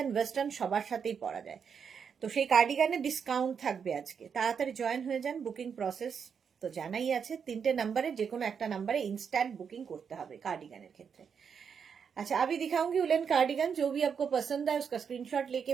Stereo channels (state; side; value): quieter; left; 6.8 dB